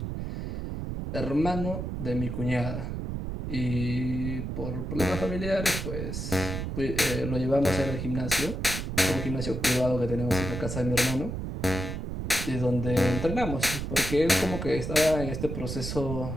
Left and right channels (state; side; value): noise; right; rumble, 4 dB below the sound